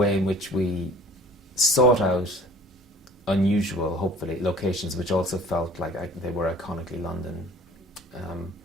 in which we sought out unusual, hopefully, locations which also felt like they were iconically London,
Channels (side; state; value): both; normal; correlation 0.50